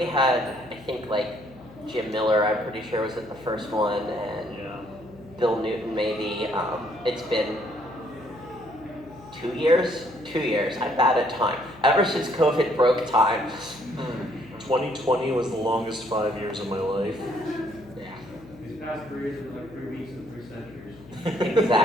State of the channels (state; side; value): noise; left; hum, 20 dB below the sound